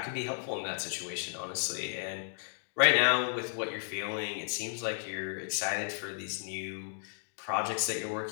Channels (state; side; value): silent; right; digital silence